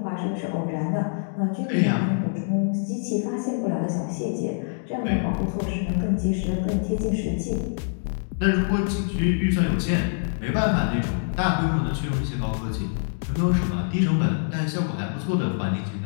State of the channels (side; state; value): right; silent; digital silence